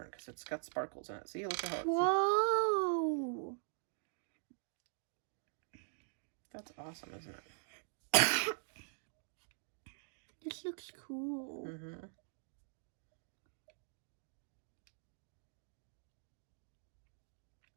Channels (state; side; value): silent; left; digital silence